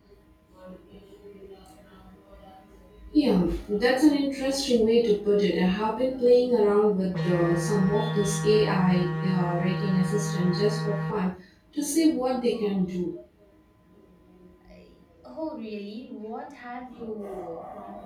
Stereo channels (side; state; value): both; identical; correlation 1.00